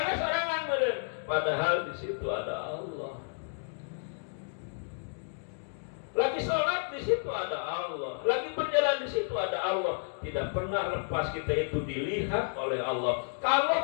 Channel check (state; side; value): silent; right; digital silence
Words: sorangan meureun, padahal di situ ada Allah. Lagi sholat di situ ada Allah, lagi berjalan di situ ada Allah. Tidak pernah lepas kita itu dilihat oleh Allah.